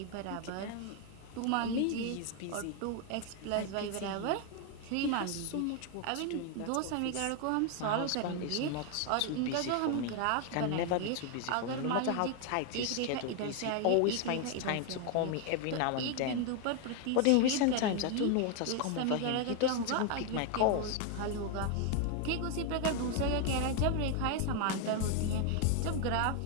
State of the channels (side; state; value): both; different; correlation 0.01